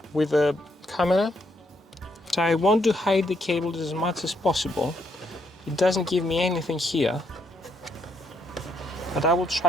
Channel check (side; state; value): both; normal; correlation 0.75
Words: with a camera. So I want to hide the cables as much as possible. It doesn't give me anything here, but I will